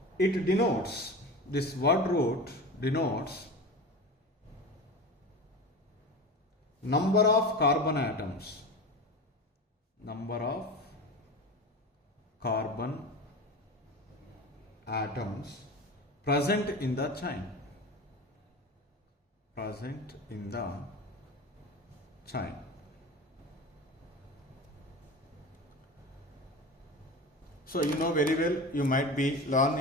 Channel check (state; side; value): normal; both; correlation 0.30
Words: it denotes, this word root denotes number of carbon atoms, present in the chain. So you know very well, you might be learn